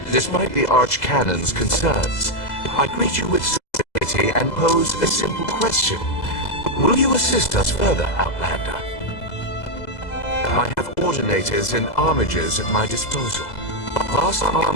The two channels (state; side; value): late; right; 2.0 ms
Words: Despite the Archcanon's concerns, I greet you with civility and pose a simple question. Will you assist us further, Outlander? I have ordinators and armigers at my disposal. Vast